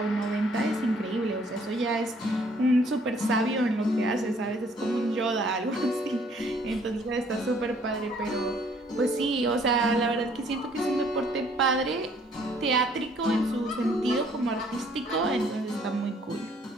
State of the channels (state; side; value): normal; both; correlation 0.61